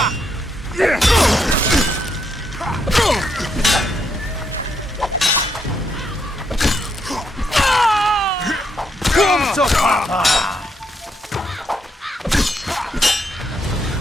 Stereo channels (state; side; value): normal; both; correlation 0.77